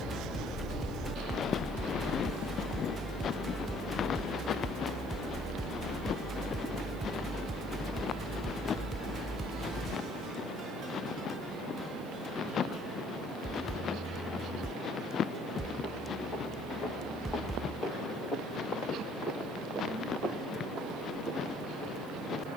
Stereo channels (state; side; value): noise; left; hiss, 23 dB below the sound